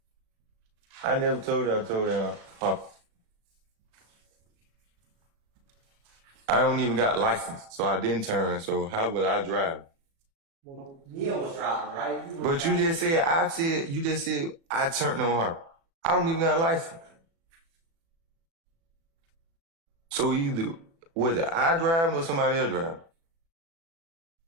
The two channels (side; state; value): left; late; 36 ms